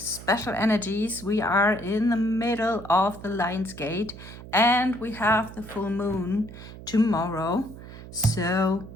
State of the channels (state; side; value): noise; right; hum, 15 dB below the sound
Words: energies. We are in the middle of the Lion's Gate and we have the full moon tomorrow. So